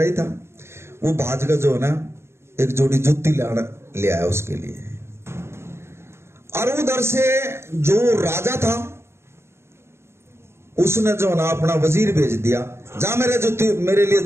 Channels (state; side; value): late; left; 0.12 ms